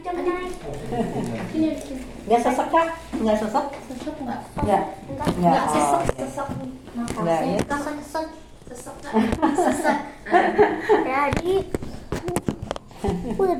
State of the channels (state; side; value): identical; both; correlation 1.00